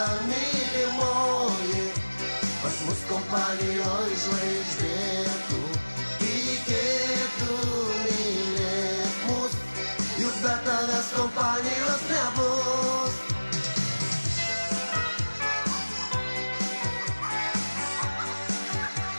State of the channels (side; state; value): both; inverted; correlation -1.00